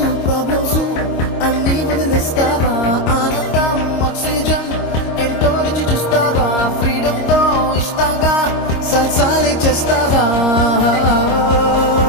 ప్రాబ్లమ్స్ అన్నీ వదిలేస్తావా, ఆనందం ఆక్సిజన్ ఎంతో రుచి చూస్తావా, ఫ్రీడమ్ తో ఇష్టంగా సల్సాలే చేస్తావా.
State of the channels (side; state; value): right; late; 26 ms